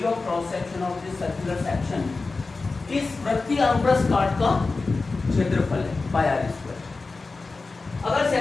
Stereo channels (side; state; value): right; quieter; 3.8 dB